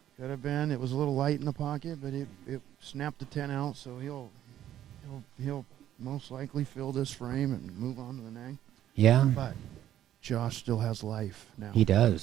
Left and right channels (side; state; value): left; quieter; 11.8 dB